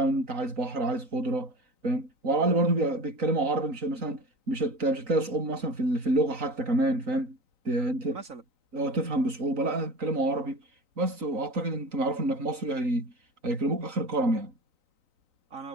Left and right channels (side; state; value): left; late; 3.9 ms